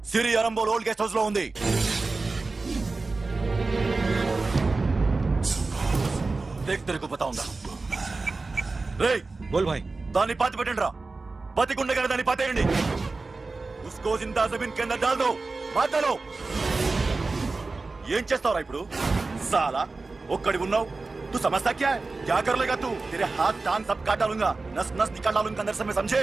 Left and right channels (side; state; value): left; quieter; 3.7 dB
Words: సిరి అరంబోల్ ఓల్డ్ గెస్ట్ హౌస్ లో ఉంది. దేక్ తెరకు పతా ఉందా? రేయ్ బోల్ భాయ్. దాన్ని పాతి పెట్టండి రా. బతికుండగానే దాన్ని పాతేయండి. ఉస్కో జిందా జమీన్ కింద డాల్ దో. మాటలో ఏం చేస్తావురా ఇప్పుడు? సాలా ఒక్కడి ఉన్నావు. तू समझता क्या है? क्या कर लेगा तू? तेरे हाथ टांग सब काट डालूंगा, नस नस निकाल डालूंगा अंदर से, मैं समझे?